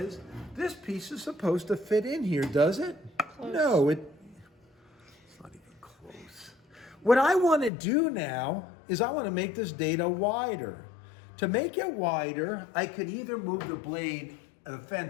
this piece is supposed to fit in here, does it? Close. No, it's not even close. What I want to do now is I want to make this dado wider. To make it wider, I could either move the blade, the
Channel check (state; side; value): drops out; right; at 7.7 s